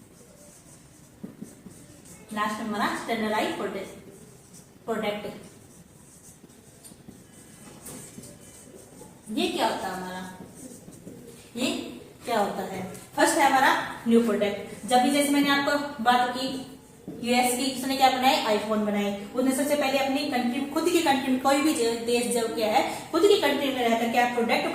लास्ट में हमारा स्टैंडर्डाइज्ड प्रोडक्ट। ये क्या होता है हमारा, ये क्या होता है, फर्स्ट है हमारा न्यू प्रोडक्ट। जब भी जैसे मैंने आपको बात की यूएस की, उसने क्या बनाए, आईफोन बनाए। उसने सबसे पहले अपनी कंट्री, खुद की कंट्री में, कोई भी देश जब क्या है खुद की कंट्री में रहकर क्या प्रोडक्ट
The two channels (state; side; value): identical; both; correlation 1.00